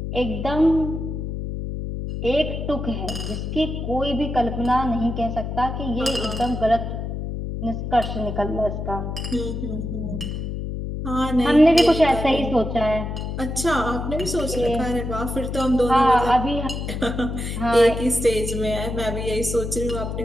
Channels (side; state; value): left; noise; hum, 5 dB below the sound